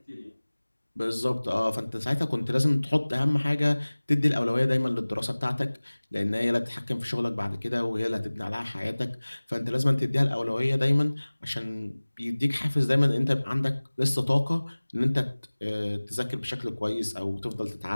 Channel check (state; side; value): inverted; both; correlation -1.00